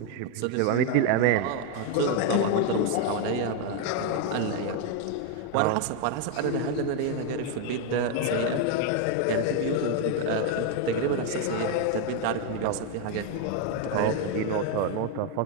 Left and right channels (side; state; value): both; different; correlation 0.01